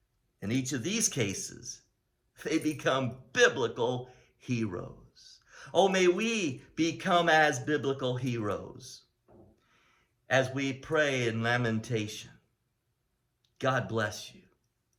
In each of these cases, they become biblical heroes. Oh, may we become as biblical heroes as we pray in lamentation. God bless you.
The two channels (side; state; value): both; identical; correlation 1.00